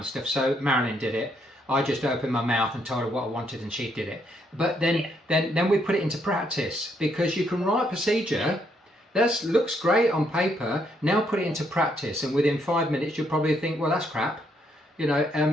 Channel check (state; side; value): normal; both; correlation 0.73